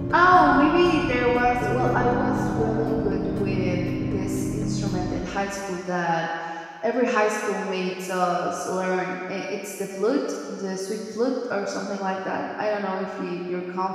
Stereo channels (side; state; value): both; identical; correlation 1.00